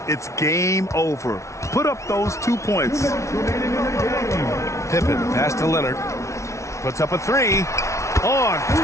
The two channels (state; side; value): late; right; 0.14 ms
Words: it's game over. Put up those 2 points. Pippen, pass to Leonard. Puts up a 3. On